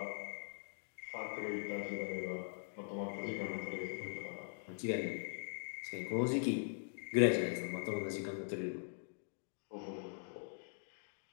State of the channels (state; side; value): silent; right; digital silence